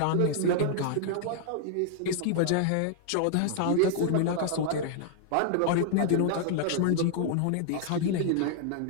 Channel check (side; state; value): both; different; correlation -0.01